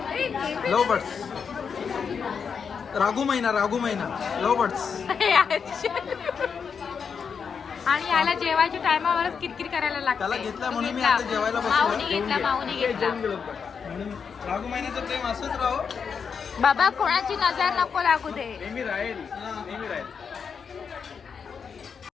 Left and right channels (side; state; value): right; quieter; 6.3 dB